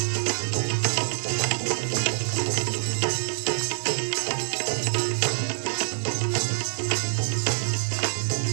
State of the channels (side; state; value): left; silent; digital silence